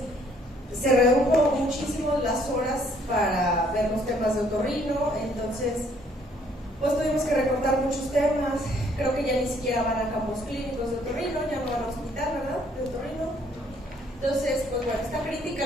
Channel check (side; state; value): both; normal; correlation 0.64